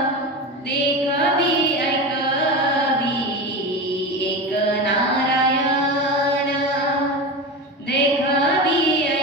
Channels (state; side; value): normal; both; correlation 0.24